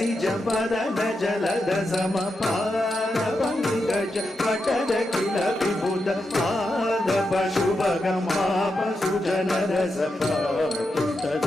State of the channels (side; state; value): both; normal; correlation 0.86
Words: పదన జలద సమ పాద పంకజ పటద కిల విభుద పాద పశుభగమాపసు జన రస